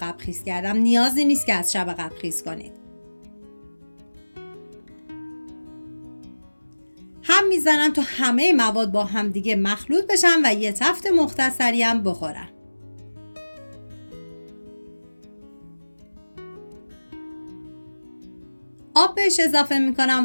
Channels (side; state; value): both; inverted; correlation -1.00